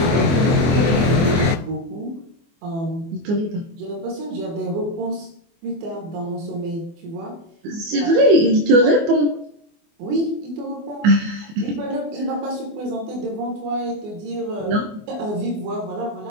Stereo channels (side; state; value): left; late; 24 ms